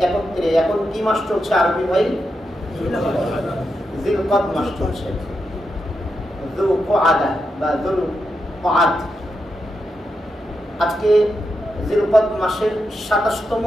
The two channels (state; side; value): normal; both; correlation 0.86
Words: একত্রে এখন কি মাস চলছে আরবি ভাই? জিলকদ মাস চলছে। যুলকআদা বা যুলকআদ, আজকে জিলকদ মাসের 27তম